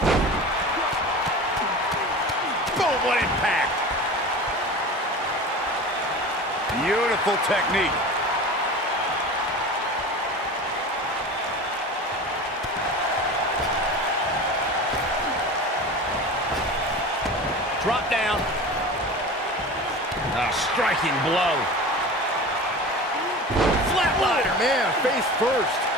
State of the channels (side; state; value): both; normal; correlation 0.34